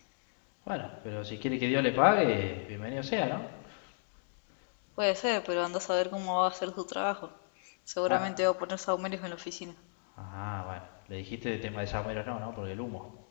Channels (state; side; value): silent; right; digital silence